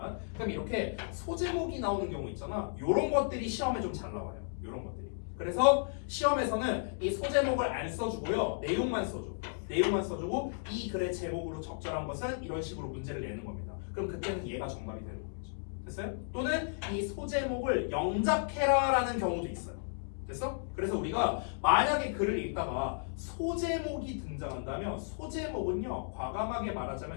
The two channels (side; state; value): right; silent; digital silence